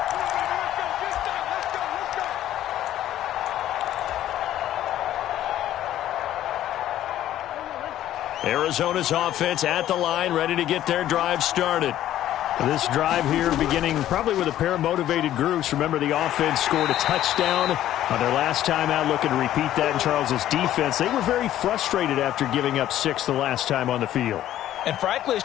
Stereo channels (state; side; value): quieter; right; 12.6 dB